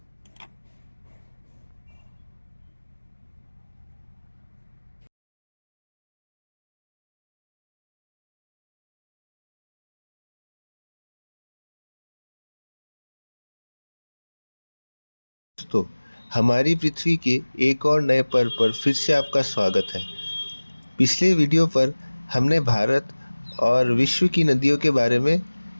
दोस्तों, हमारी पृथ्वी के एक और नए पर्व पर फिर से आपका स्वागत है। पिछले वीडियो पर हमने भारत और विश्व की नदियों के बारे में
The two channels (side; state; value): both; inverted; correlation -1.00